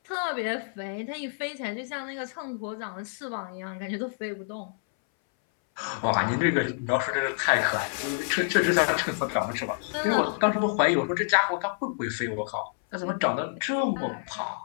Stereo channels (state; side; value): silent; right; 59 dB below the other